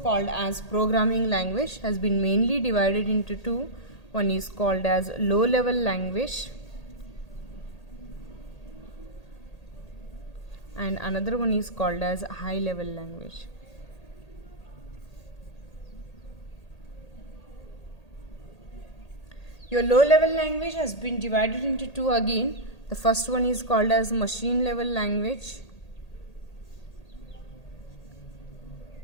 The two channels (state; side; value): late; right; 1.8 ms